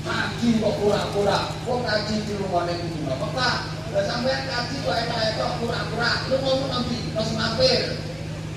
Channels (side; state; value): right; noise; rumble, 24 dB below the sound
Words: haji kok pura-pura, wong haji di rumahne kudu Mekah. Lah sampean haji kok etok-etok pura-pura, lungamu nang ndi? Terus mampir.